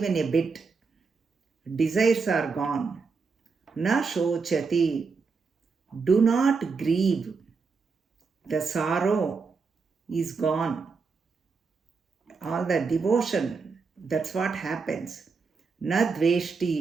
a bit. Desires are gone. Na shochati. Do not grieve. The sorrow is gone. All the devotion, that's what happens. Na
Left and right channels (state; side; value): quieter; left; 4.8 dB